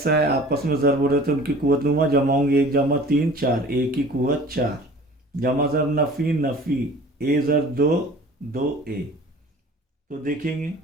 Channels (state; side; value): normal; both; correlation 0.45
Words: है, आपस में ज़र्ब हो रहे हैं, तो उनकी कुवत लूँगा, जमा होंगे 1 जमा 3 4, a की कुवत 4, जमा ज़र्ब नफ़ी नफ़ी, a ज़र्ब 2 2a। तो देखेंगे